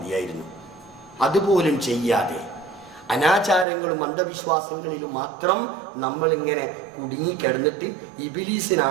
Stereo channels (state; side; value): drops out; left; at 3.7 s